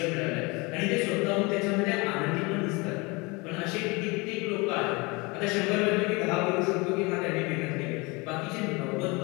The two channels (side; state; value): right; quieter; 26.5 dB